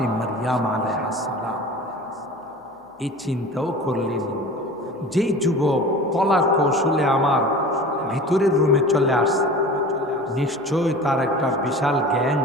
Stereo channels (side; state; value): both; normal; correlation 0.38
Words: মারিয়াম আলাইহিস সালাম এই চিন্তাও করলেন, যেই যুবক কলা কৌশলে আমার ভিতরের রুমে চলে আসছে, নিশ্চয় তার একটা বিশাল গ্যাং